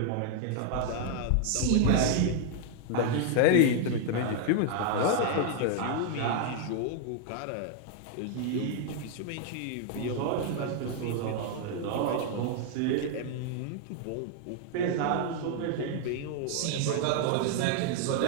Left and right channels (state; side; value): different; both; correlation 0.00